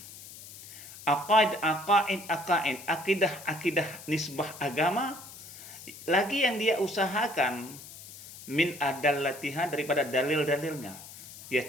akidah nisbah agama, lagi yang dia usahakan min adallatiha, daripada dalil-dalilnya. Dia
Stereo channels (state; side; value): noise; left; hiss, 15 dB below the sound